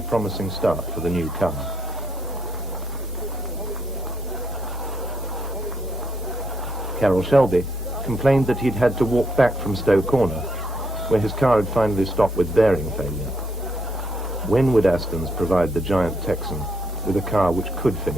promising start for the new car. Carroll Shelby complained that he'd had to walk back from Stowe Corner, where his car had finally stopped with bearing failure. When would Astons provide the giant Texan with a car which could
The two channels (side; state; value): both; normal; correlation 0.75